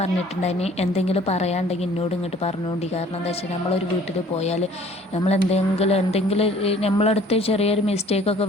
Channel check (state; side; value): normal; both; correlation 0.53